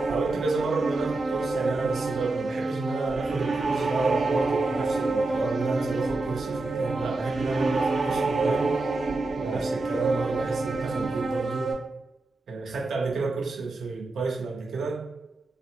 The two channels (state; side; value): quieter; left; 3.1 dB